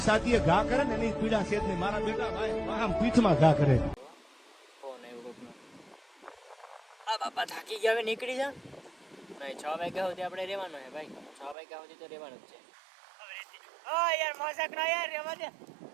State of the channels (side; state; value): left; drops out; at 11.6 s